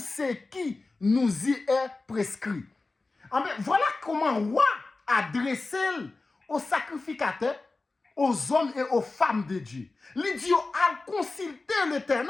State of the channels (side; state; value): right; quieter; 3.5 dB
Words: nous y est prescrit. Voilà comment roi adressé aux sacrificateurs, aux hommes et aux femmes de Dieu. L'idiot a consulté